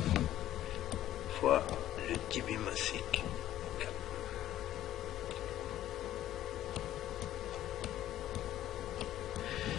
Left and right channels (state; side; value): quieter; right; 12.9 dB